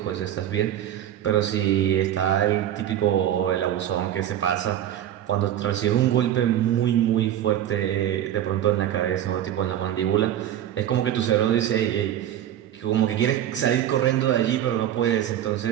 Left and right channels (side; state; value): left; quieter; 11.3 dB